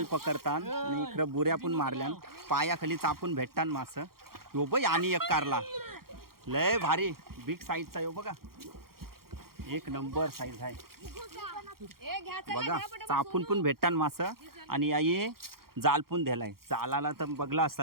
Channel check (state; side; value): late; left; 0.93 ms